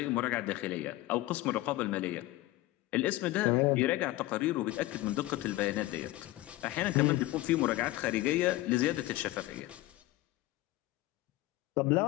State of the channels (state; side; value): quieter; right; 17.6 dB